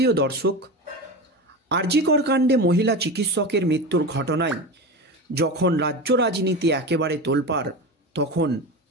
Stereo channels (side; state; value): both; normal; correlation 0.25